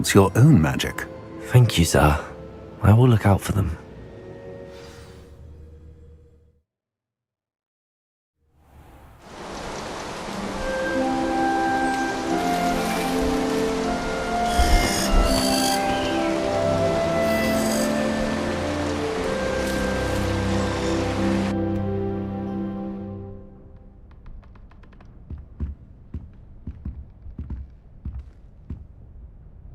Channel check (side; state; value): both; identical; correlation 1.00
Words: your own magic. Thank you, sir. I will look out for them.